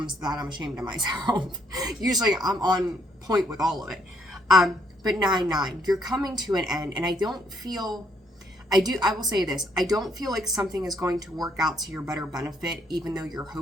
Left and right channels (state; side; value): normal; both; correlation 0.70